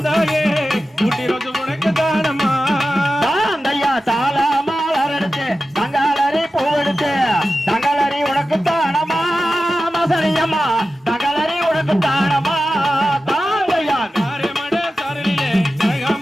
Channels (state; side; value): normal; both; correlation 0.93